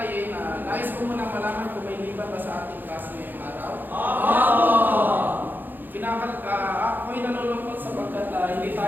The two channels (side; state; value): left; late; 0.090 ms